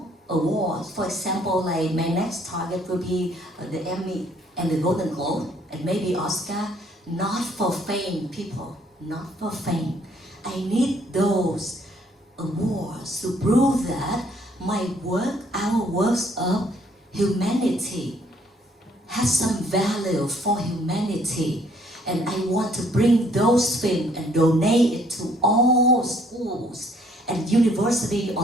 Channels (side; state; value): both; normal; correlation 0.64